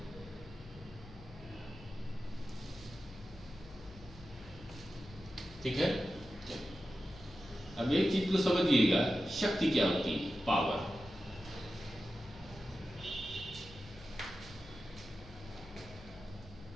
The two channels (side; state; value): left; noise; hum, 18 dB below the sound